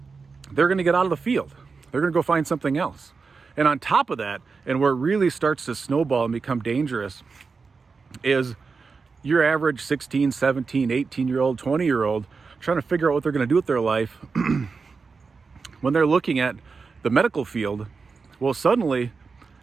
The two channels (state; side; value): quieter; left; 4.8 dB